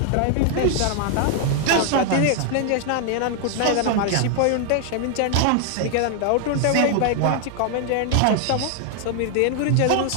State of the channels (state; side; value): different; both; correlation 0.00